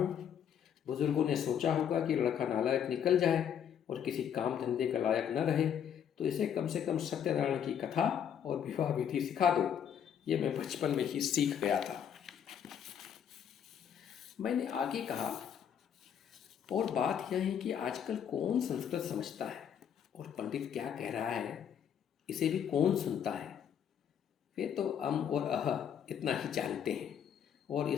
बुजुर्गों ने सोचा होगा कि लड़का नालायक निकल जाए और किसी काम धंधे का लायक न रहे तो इसे कम से कम सत्यनारायण की कथा और विवाह विधि सिखा दो। ये मैं बचपन में ही सीख गया था। मैंने आगे कहा, और बात यह है कि आजकल कौन संस्कृत समझता है और पंडित क्या कह रहा है इसे भी कौन सुनता है? वे तो अम और अह इतना ही जानते हैं, और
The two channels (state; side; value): quieter; right; 8.6 dB